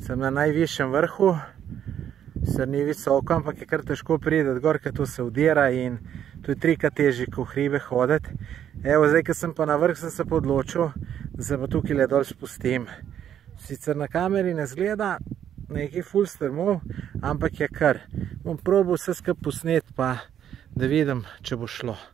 Sem na najvišjem vrhu, sicer ni visoko, ampak je kar težko priti gor, ker to se udira in to je trikrat težje, ko v hribe hoditi. Evo, zdaj, ko sem pa na vrh, sem se pa odločil, da se pa tukaj le dol spustim. Sicer na kameri ne zgleda nekaj ful strmov, ampak je kar. Bom probal vse skupaj posnet, pa da vidim, če bo šlo.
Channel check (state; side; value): quieter; left; 9.8 dB